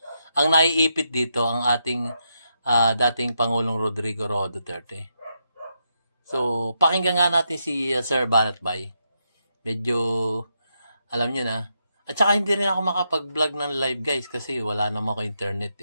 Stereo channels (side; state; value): both; inverted; correlation -0.82